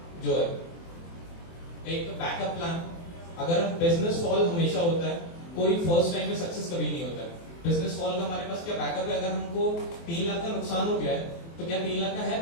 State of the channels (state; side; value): late; right; 24 ms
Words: जो है। एक बैकअप प्लान। अगर बिजनेस फॉल हमेशा होता है, कोई फर्स्ट टाइम में सक्सेस कभी नहीं होता है। बिजनेस फॉल का हमारे पास क्या बैकअप है? अगर हमको 3 लाख का नुकसान हो गया है तो क्या 3 लाख का है